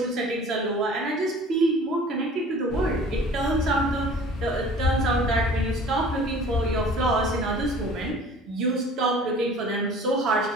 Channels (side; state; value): both; normal; correlation 0.47